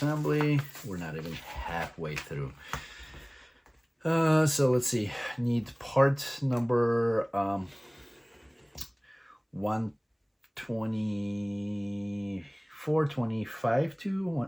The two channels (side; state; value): both; identical; correlation 1.00